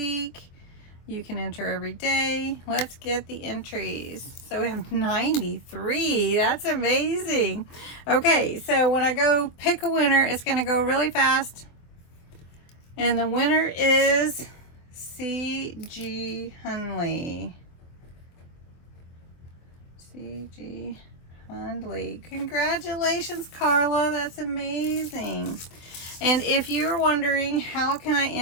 You can enter every day. Let's get the entries. So we have 93. That's amazing. Okay, so when I go pick a winner, it's going to go really fast. And the winner is C.G. Hunley. C.G. Hunley. Congratulations, Carla. That's amazing. And if you're wondering how can I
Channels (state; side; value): late; right; 24 ms